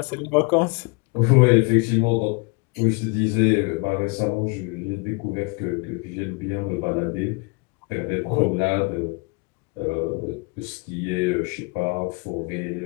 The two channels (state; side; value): quieter; right; 29.6 dB